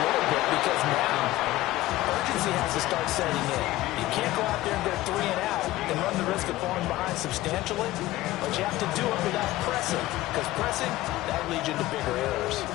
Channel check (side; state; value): right; quieter; 16.7 dB